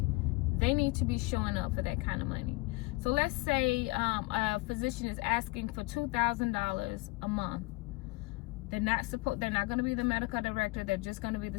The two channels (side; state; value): right; quieter; 23.1 dB